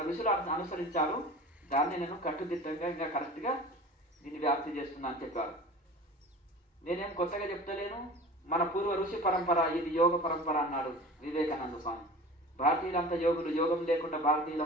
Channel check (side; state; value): both; normal; correlation 0.38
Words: ఋషులు అనుసరించారు. దాన్ని నేను కట్టుదిట్టంగా ఇంకా కరెక్ట్గా దీన్ని వ్యాప్తి చేస్తున్నా అని చెప్పారు. నేనేం కొత్తగా చెప్తలేను. మన పూర్వ ఋషి పరంపర ఇది యోగ పరంపర అన్నాడు వివేకానంద స్వామి. భారతీయులంతా యోగులు, యోగం లేకుండా